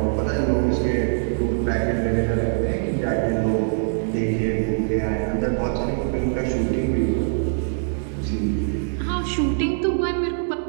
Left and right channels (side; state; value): left; silent; 63 dB below the other